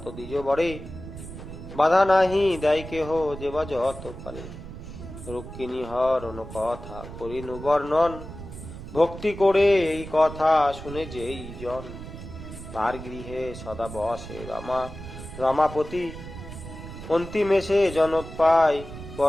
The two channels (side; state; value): right; noise; rumble, 12 dB below the sound